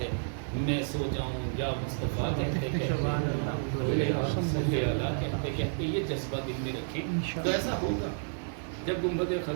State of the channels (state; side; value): silent; left; digital silence